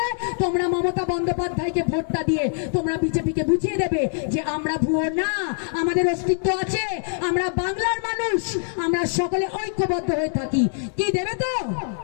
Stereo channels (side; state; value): right; silent; digital silence